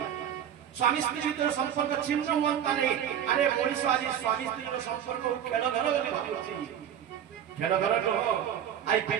स्वामी स्त्री भीतर संपर्क छिन्न होता नहीं अरे मनीष आज स्वामी स्त्री संपर्क खेल घर बोली भाबुची खेल घर तो आई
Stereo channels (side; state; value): left; quieter; 9.6 dB